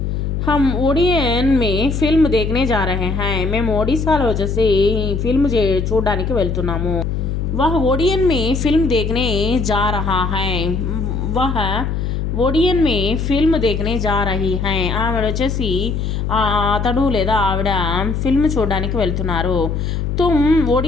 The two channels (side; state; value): left; noise; hum, 1 dB below the sound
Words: हम ओडियन में फिल्म देखने जा रहे हैं, మేము ఒడిశాలో వచ్చేసి ఫిల్మ్ చూడడానికి వెళ్తున్నాము. वह ओडियन में फिल्म देखने जा रहा है, वह ఓడియన్ మే ఫిల్మ్ దేఖనే జా రహీ హై, ఆవిడ వచ్చేసి అతడు లేదా ఆవిడ ఫిల్మ్ చూడడానికి వెళ్తున్నారు. తుమ్